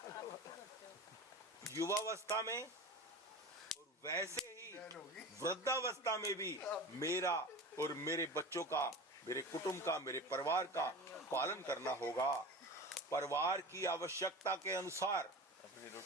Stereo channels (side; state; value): both; normal; correlation 0.32